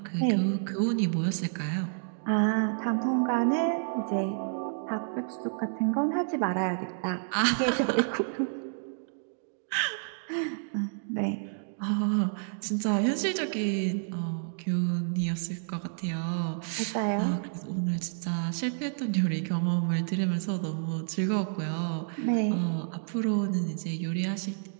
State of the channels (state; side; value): silent; left; digital silence